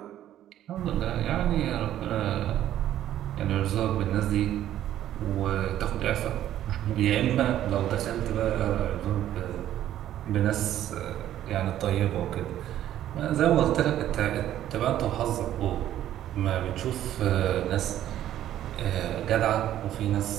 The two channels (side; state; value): left; quieter; 12.1 dB